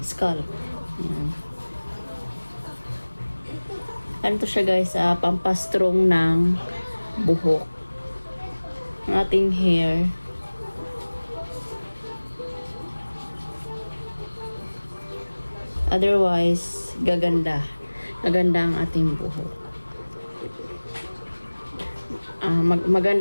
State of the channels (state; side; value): inverted; both; correlation -1.00